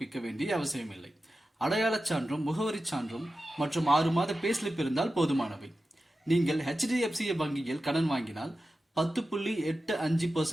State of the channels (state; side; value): normal; both; correlation 0.93